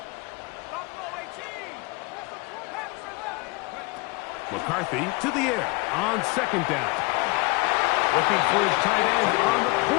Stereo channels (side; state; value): right; quieter; 26.0 dB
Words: McCarthy to the air on second down. Looking for his tight end on the